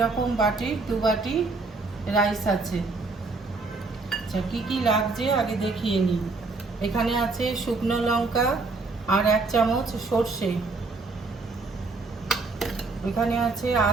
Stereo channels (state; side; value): quieter; left; 3.7 dB